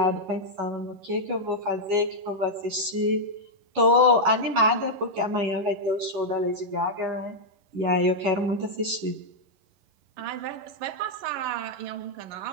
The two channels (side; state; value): left; late; 11 ms